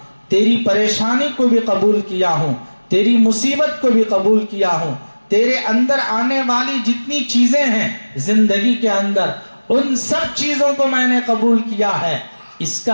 تیری پریشانی کو بھی قبول کیا ہوں، تیری مصیبت کو بھی قبول کیا ہوں، تیرے اندر آنے والی جتنی چیزیں ہیں زندگی کے اندر ان سب چیزوں کو میں نے قبول کیا ہے۔ اس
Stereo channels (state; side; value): inverted; both; correlation -1.00